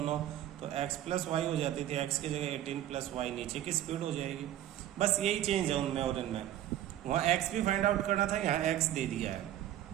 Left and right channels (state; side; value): quieter; left; 12.4 dB